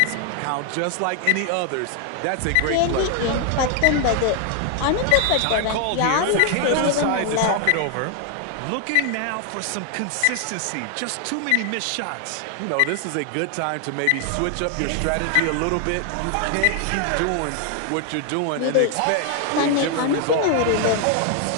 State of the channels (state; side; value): different; both; correlation 0.00